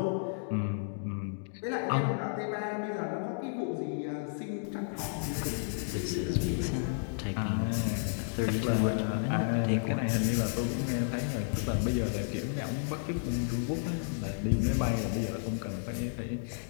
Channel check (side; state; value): right; silent; digital silence